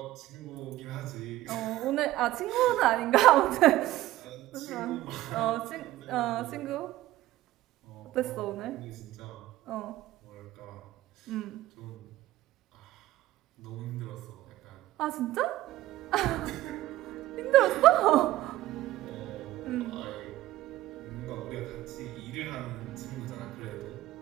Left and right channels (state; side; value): quieter; left; 15.9 dB